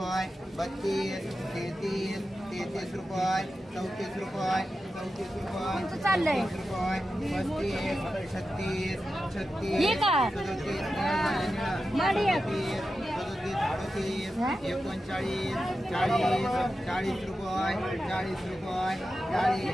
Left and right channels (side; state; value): both; normal; correlation 0.91